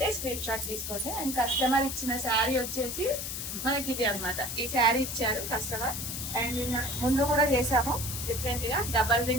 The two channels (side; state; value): left; noise; hiss, 5 dB below the sound